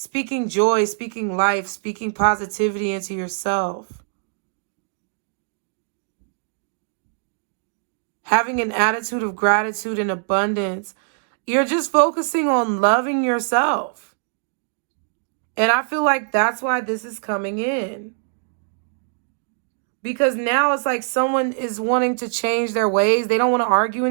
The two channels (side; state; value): left; silent; digital silence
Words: joy, speaking life, speaking positivity into yourself. Having an attitude of gratitude and abundance. You're just focusing on loving yourself. And I feel like that's why this is coming in. Because now it's like someone is wanting to change their ways. They don't want to argue